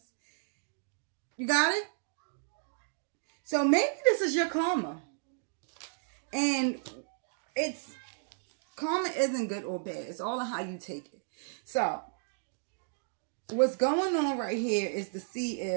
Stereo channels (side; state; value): left; silent; digital silence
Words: You got it? So maybe this is your karma. And karma isn't good or bad. It's all on how you take it. So, what's going on right here is to see